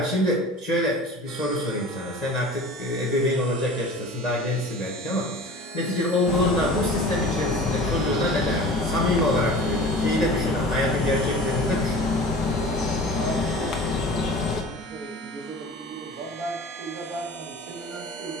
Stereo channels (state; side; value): normal; both; correlation 0.39